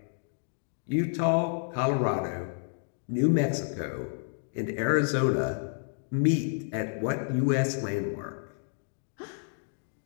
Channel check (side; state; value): right; silent; digital silence